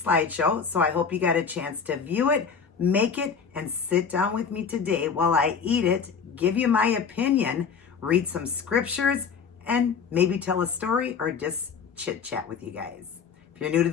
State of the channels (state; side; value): quieter; right; 6.1 dB